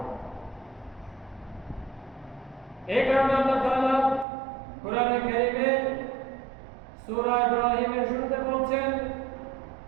এই কারণে আল্লাহ তাআলা কোরআনে কারীমে সূরা ইব্রাহিমের শুরুতে বলছেন,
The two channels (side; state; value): left; drops out; at 4.2 s